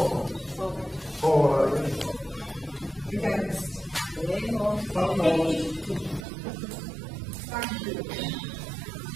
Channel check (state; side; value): drops out; left; at 6.2 s